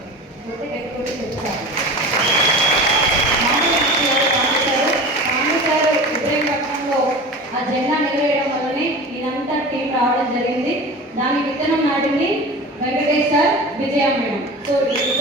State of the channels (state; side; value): normal; both; correlation 0.34